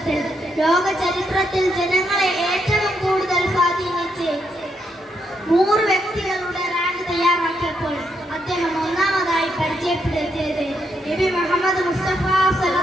ലോക ചരിത്രത്തിൽ ജനങ്ങളെ ഏറ്റവും കൂടുതൽ സ്വാധീനിച്ച് 100 വ്യക്തികളുടെ റാങ്ക് തയ്യാറാക്കിയപ്പോൾ അദ്ദേഹം ഒന്നാമതായി പരിചയപ്പെടുത്തിയത് നബി മുഹമ്മദ് മുസ്തഫ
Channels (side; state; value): both; normal; correlation 0.78